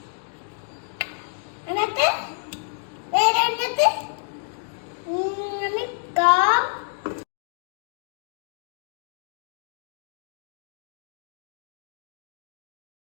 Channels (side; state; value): right; silent; digital silence